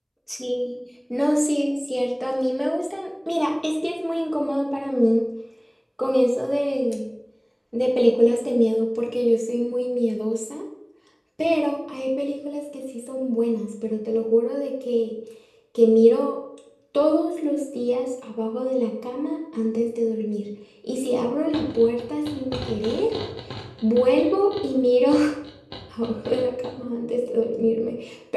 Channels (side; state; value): both; identical; correlation 1.00